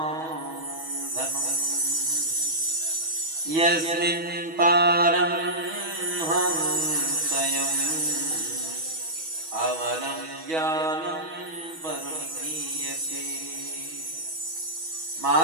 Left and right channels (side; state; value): left; late; 6.2 ms